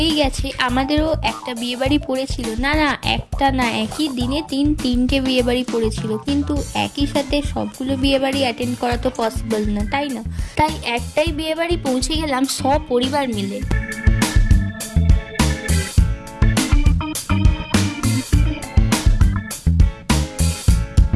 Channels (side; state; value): both; identical; correlation 1.00